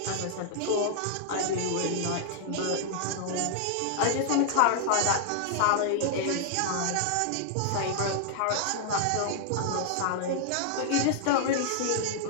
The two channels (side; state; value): both; different; correlation -0.01